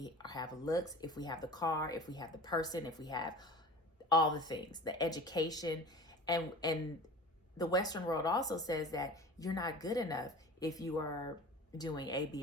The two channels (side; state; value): both; normal; correlation 0.38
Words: have looks, if we have the car, if we have the person, if we have all the things, the education. And the Western world also says that you're not good enough if you are doing A,